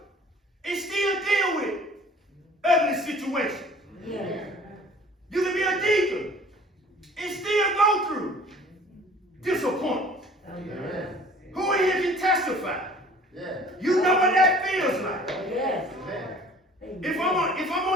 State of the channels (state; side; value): normal; both; correlation 0.50